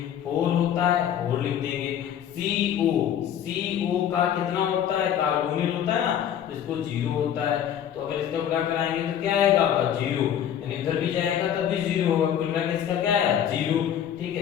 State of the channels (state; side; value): quieter; right; 9.7 dB